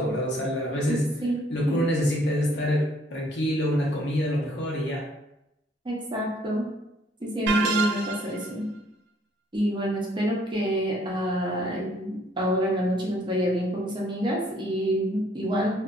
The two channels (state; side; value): normal; both; correlation 0.63